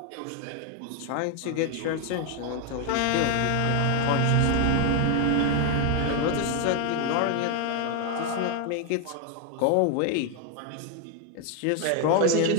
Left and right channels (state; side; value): different; both; correlation 0.01